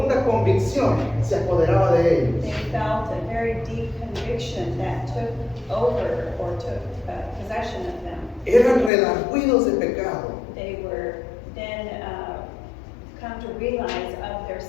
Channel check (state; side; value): drops out; right; at 8.9 s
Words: convicción se apoderaba de ellos. They felt a very deep conviction that took over or took possession of them. Eran redargüidos de pecado. They were then come to realize of their